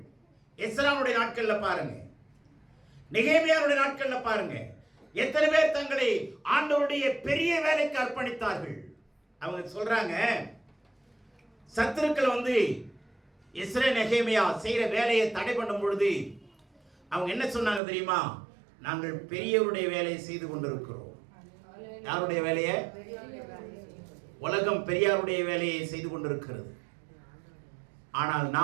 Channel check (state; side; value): drops out; left; at 17.8 s